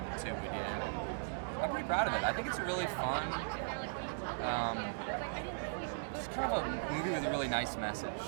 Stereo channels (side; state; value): left; silent; digital silence